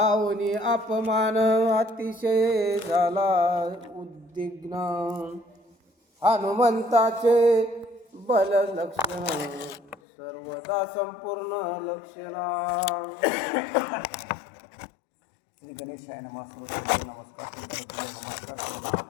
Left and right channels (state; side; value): drops out; right; at 10.0 s